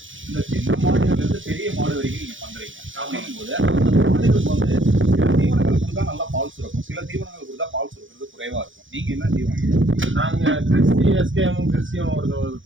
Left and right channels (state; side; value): late; left; 0.56 ms